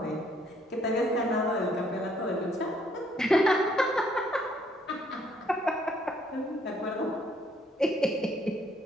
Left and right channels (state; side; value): normal; both; correlation 0.66